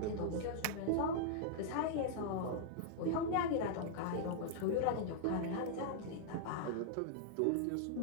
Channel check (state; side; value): different; both; correlation -0.01